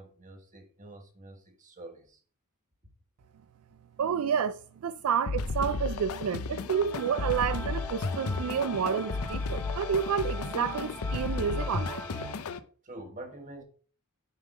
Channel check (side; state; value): left; quieter; 3.2 dB